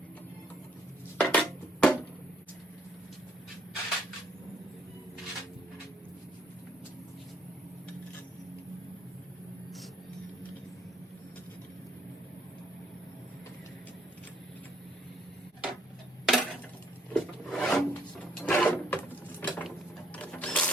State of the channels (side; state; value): both; normal; correlation 0.66